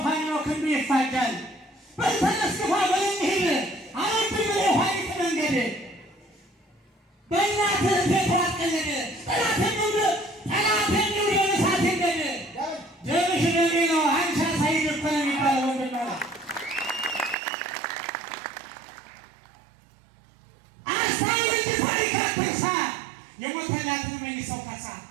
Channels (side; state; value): left; drops out; at 17.4 s